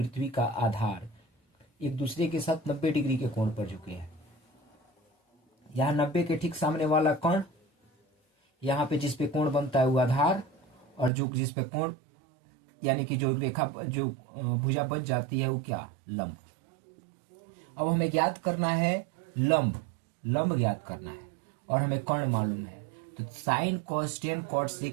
का आधार एक दूसरे के साथ 90 डिग्री के कोण पर झुके हैं। यहाँ 90 के ठीक सामने वाला कर्ण, यहाँ पे जिस पे कोण बनता है वो आधार, और जो जिस पे कोण यानी कि जो रेखा जो भुजा बच जाती है वो क्या, लंब। अब हमें ज्ञात करना है लंब ज्ञात करना है और हमें कर्ण मालूम है। तो sine cos tan cot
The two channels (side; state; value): left; drops out; at 11.1 s